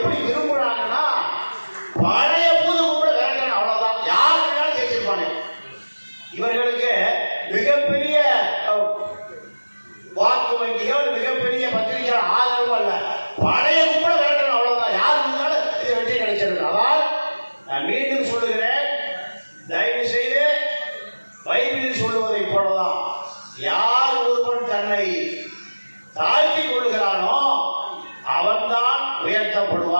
விரும்புறாங்கன்னா பழைய பூது கூட விரட்டணும், அவ்வளவுதான். யார் வேணாலும் ஜெயிச்சிருப்பாங்க. இவர்களுக்கு மிகப்பெரிய வாக்கு வங்கியோ மிகப்பெரிய பத்திரிகை ஆதரவு அல்ல, பழைய கூட விரட்டணும், அவ்வளவுதான். யார் இருந்தாலும் இதை வெற்றி கிடைச்சிருக்கு. அதால் நான் மீண்டும் சொல்லுகிறேன், தயவு செய்து பைபிளில் சொல்லுவதை போலதான் யார் ஒருவன் தன்னை தாழ்த்தி கொள்ளுகிறானோ அவன்தான்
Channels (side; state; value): both; inverted; correlation -1.00